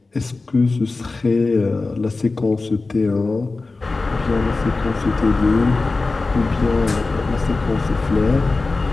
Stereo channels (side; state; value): right; quieter; 3.6 dB